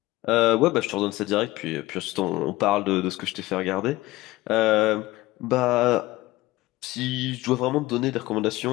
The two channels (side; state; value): right; quieter; 18.8 dB